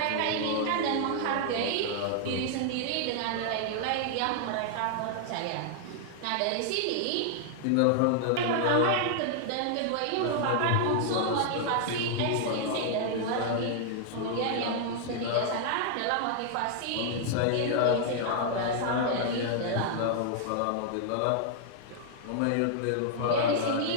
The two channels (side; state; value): both; different; correlation -0.01